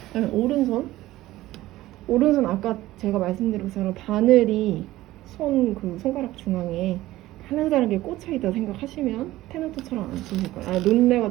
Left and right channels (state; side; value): quieter; left; 16.3 dB